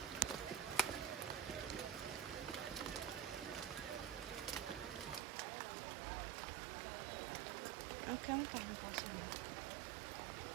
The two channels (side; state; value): left; drops out; at 5.2 s